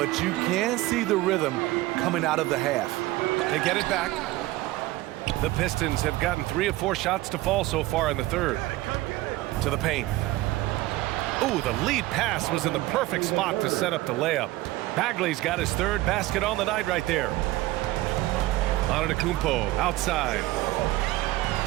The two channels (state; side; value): quieter; left; 18.1 dB